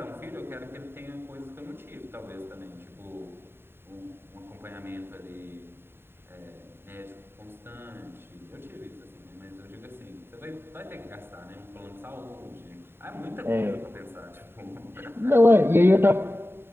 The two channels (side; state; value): left; late; 0.11 ms